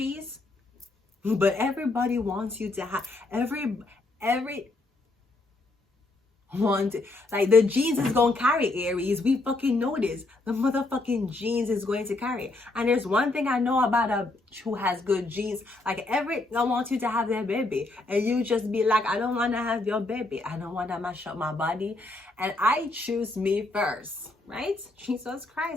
but everybody wants you to have every want, like, the genes is gonna carry, Aries. We fucking know this. The motherfucking genes is going to carry. And there's one thing I know about a bitch who has good genes. Like, I want you to have their baby, and you just be like, I don't want to have your baby. I don't want to mash up my body, and I choose me first, right? Jesus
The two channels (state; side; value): quieter; right; 3.0 dB